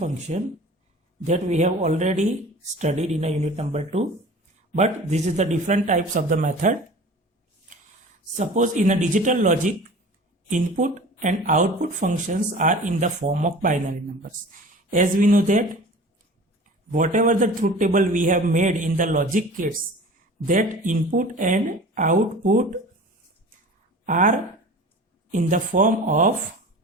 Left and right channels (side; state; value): both; normal; correlation 0.40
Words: that we have already studied in a unit number 2. But this is the different types of the method. Suppose in a digital logic, input and output functions are in the form of binary numbers. As we know that whatever the truth table we have made in the logic kits, that input and output are in the form of